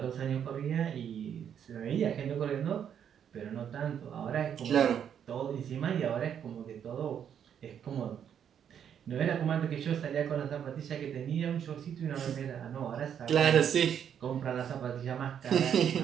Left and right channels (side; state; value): left; quieter; 8.7 dB